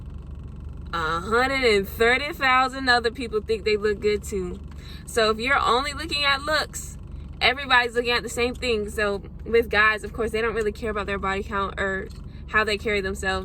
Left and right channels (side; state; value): both; identical; correlation 1.00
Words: 130,000 other people think they look good too. So if you're only looking at looks, everybody's looking at the same thing. So with guys, of course, they don't really care about their body count or how they carry